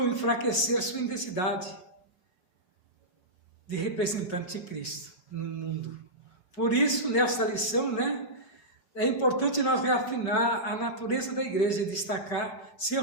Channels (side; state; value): right; late; 5.7 ms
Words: enfraquecer sua identidade de representante de Cristo no mundo. Por isso, nessa lição, é importante nós reafinar a natureza da igreja e destacar seu